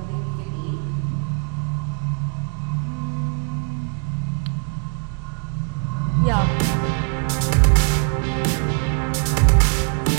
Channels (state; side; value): quieter; left; 39.3 dB